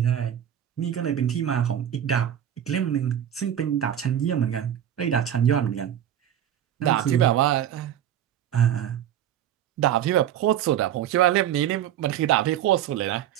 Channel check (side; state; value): left; quieter; 10.5 dB